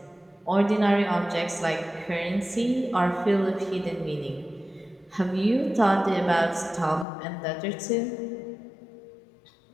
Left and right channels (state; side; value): drops out; right; at 7.1 s